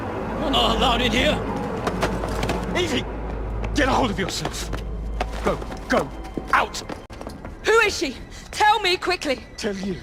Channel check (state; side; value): identical; both; correlation 1.00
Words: You're not allowed in here! Evie! Get a hold of yourself! Go! Out! Who is she? Tell me quickly! Tell you?